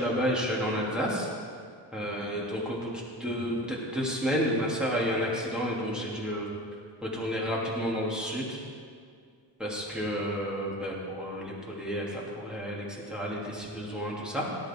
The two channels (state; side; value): normal; both; correlation 0.36